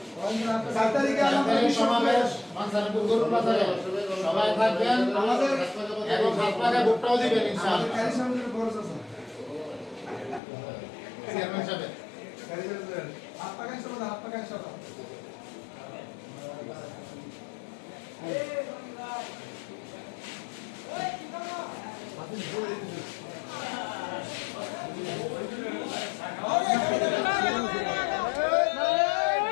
7 তারিখে আমাদের সমাবেশ মানসারপুর গরুর বাজারে সবাই থাকবেন আমাদের এবং হাত পাকা ভোটটাও দিবেন ইনশাআল্লাহ কারি সামনের খরচ আছে চেয়ারম্যান সাহেব কারি সামনের হাত পাকা সবাই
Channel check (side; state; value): right; drops out; at 10.4 s